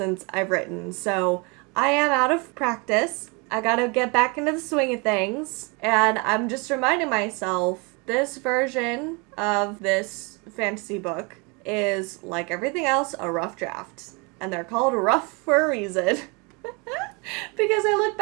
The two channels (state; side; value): quieter; left; 30.4 dB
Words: I've written. So I am out of practice. I gotta get back into the swing of things. And I'm just reminding myself, this version of this fantasy book is, like everything else, a rough draft. And they're called rough for a reason. Because I look